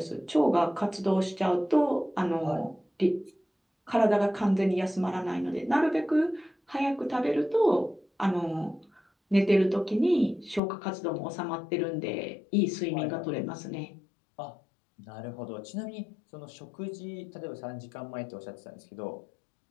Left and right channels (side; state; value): right; drops out; at 10.6 s